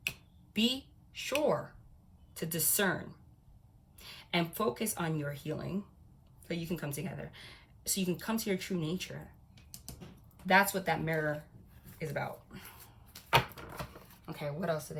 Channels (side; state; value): both; identical; correlation 1.00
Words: Be sure to discern and focus on your healing so you can come together, so you can come to your true nature. That's what that mirror is about. Okay, what else do